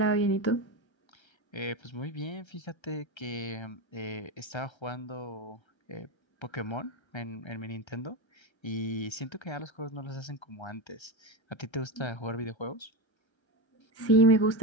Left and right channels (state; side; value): late; right; 1.3 ms